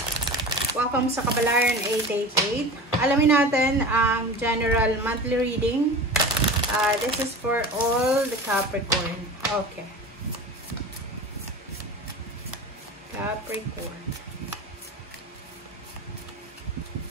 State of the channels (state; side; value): normal; both; correlation 0.33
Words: Welcome sa Kabalaran 888. Alamin natin ang general monthly reading. This is for all the Capricorn. Okay. Capricorn.